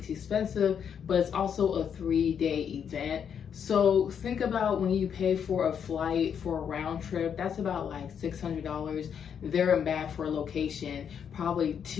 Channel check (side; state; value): right; quieter; 7.8 dB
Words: expensive, but it's also a 3-day event. So think about when you pay for a flight for a round trip, that's about like $600 there and back for a location, probably